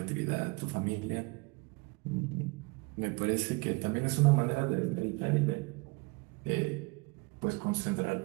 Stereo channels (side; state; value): left; quieter; 27.3 dB